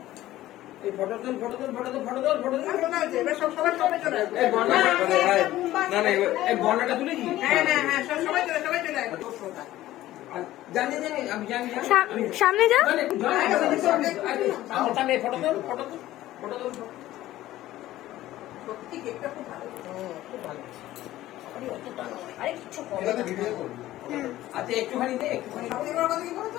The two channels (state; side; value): quieter; right; 15.0 dB